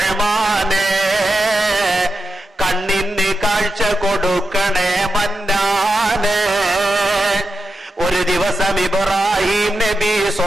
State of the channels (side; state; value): both; normal; correlation 0.89